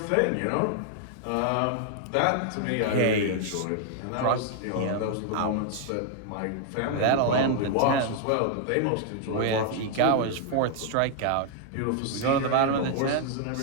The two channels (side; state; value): both; different; correlation 0.00